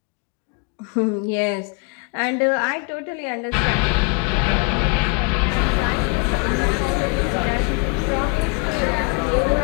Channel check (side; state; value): right; quieter; 33.2 dB